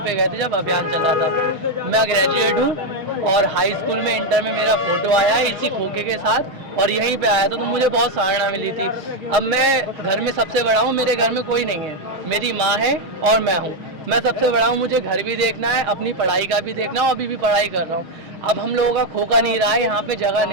गए थे जब अभियान चल रहा था। मैं ग्रेजुएट हूँ और हाई स्कूल में, इंटर में मेरा फोटो आया है इसी खोखे के साथ और यहीं पे आया था, तो मुझे बहुत सराहना मिली थी। अब मैं घर में सबसे बड़ा हूँ, मेरे घर में कोई नहीं है, मेरी माँ है और मैं हूँ। मैं सबसे बड़ा हूँ, मुझे घर भी देखना है, अपनी पढ़ाई का भी देखना है, अभी भी पढ़ाई कर रहा हूँ। अब हम लोगों का खोखा नहीं रहा है, यहाँ पे जगह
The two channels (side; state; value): left; late; 6.4 ms